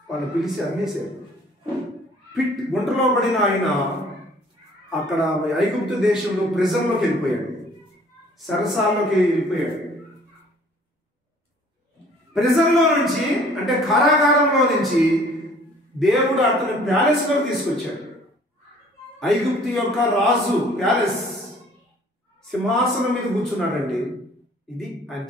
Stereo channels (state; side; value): normal; both; correlation 0.55